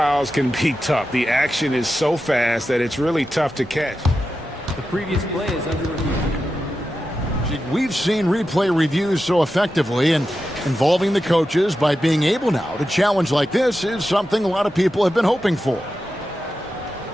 can be tough. The action is so fast that it's really tough to catch. The previous play is under review. We've seen replay reviews so effectively, and involving the coaches by being able now to challenge like this is something a lot of people have been hoping for.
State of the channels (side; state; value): both; normal; correlation 0.90